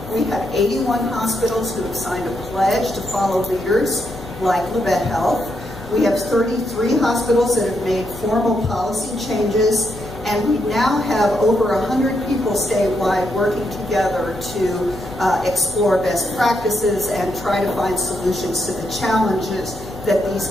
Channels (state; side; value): noise; left; hum, 16 dB below the sound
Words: We have 81 hospitals who have signed a pledge to follow leaders like Labette Health. We have 33 hospitals that have made formal policy changes, and we now have over 100 people statewide working together to explore best practices and try to find solutions to the challenges that these